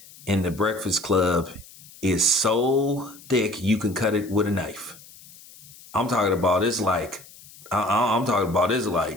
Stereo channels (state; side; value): noise; left; hiss, 21 dB below the sound